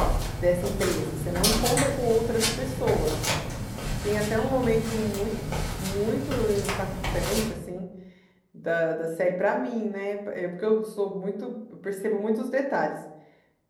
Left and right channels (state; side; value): identical; both; correlation 1.00